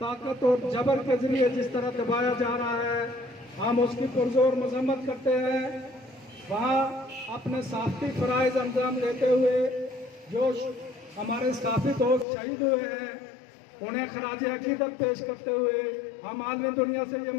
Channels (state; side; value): drops out; right; at 12.2 s